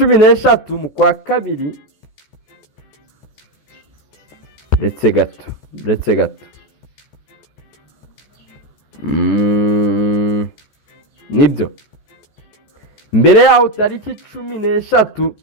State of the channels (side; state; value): right; late; 14 ms